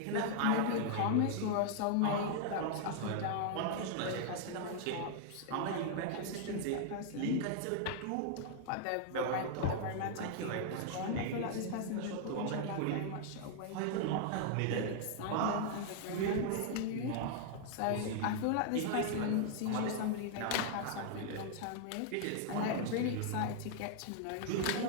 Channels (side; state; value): both; different; correlation -0.01